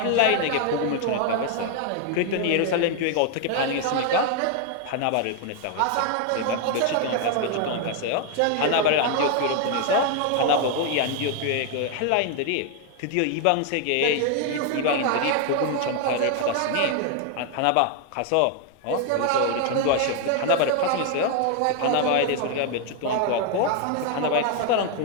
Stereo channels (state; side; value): different; both; correlation 0.00